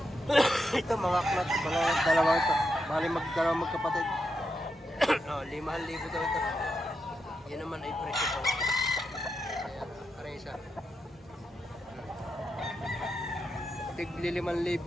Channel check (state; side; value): normal; both; correlation 0.85